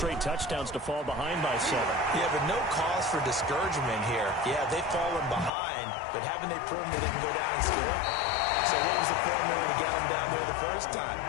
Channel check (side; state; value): right; drops out; at 5.5 s